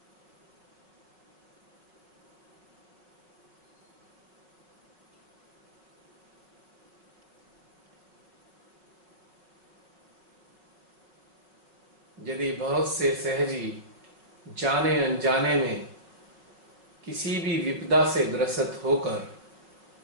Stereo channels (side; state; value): left; late; 5.3 ms